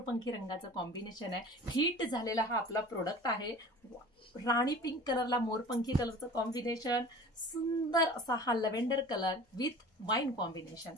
रंगाचं कॉम्बिनेशन आहे. हिट झालेला हा आपला प्रोडक्ट आहे. राणी पिंक कलरला मोरपंखी कलरचं कॉम्बिनेशन, सुंदर असा हा lavender colour with wine combination,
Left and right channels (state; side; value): normal; both; correlation 0.41